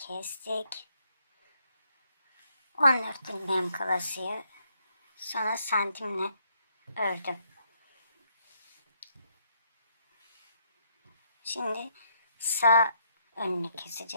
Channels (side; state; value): both; inverted; correlation -0.72